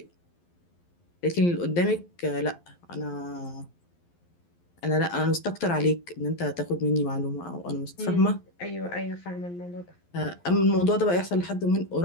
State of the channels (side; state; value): right; late; 11 ms